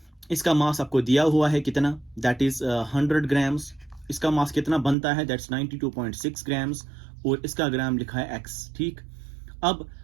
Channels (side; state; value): left; drops out; at 5.0 s